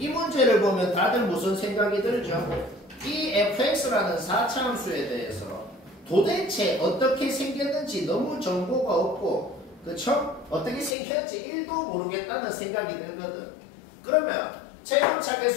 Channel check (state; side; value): drops out; right; at 11.0 s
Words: 문제를 보면 다들 무슨 생각이 들죠? 이 fx라는 4차함수에 대해서 도대체 어떻게 생겼는지 너무 정보가 없고, 그쵸? 어떻게 생겼는지 1도 모르겠다는 생각이 들거든. 그러면 최고차